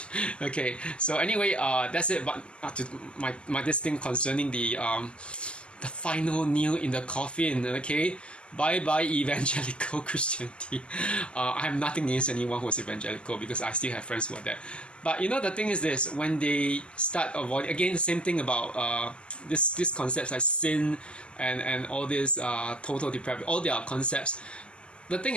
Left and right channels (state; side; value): late; right; 0.052 ms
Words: Okay, so anyway, that's it. But to my this thing concerning the final nail in the coffin. Okay, bye bye evangelical Christianity. I have nothing against anyone who is evangelical, because I still have friends who are that. But the thing is this: when they start avoiding, again, the same thing about this concepts like sin and all this total depravity, all their concepts. The thing